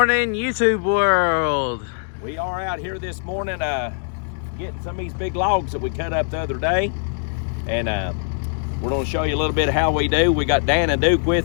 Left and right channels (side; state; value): right; silent; digital silence